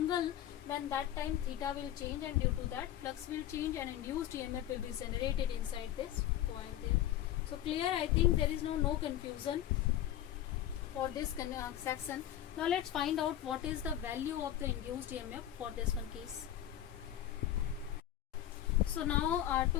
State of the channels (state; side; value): quieter; right; 12.0 dB